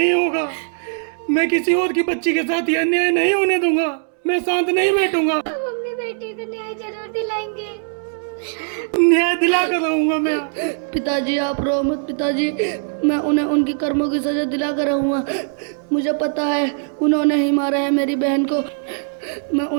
होगा। मैं किसी और की बच्ची के साथ ये अन्याय नहीं होने दूंगा। मैं शांत नहीं बैठूंगा। हम अपनी बेटी को न्याय जरूर दिलाएंगे। न्याय दिला कर रहूंगा मैं। पिताजी आप रो मत पिताजी, मैं उन्हें उनकी कर्मों की सजा दिला कर रहूँगा। मुझे पता है उन्होंने ही मारा है मेरी बहन को, मैं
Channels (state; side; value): silent; left; 66 dB below the other